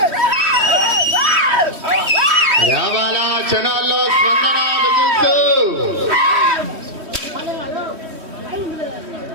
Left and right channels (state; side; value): late; left; 3.1 ms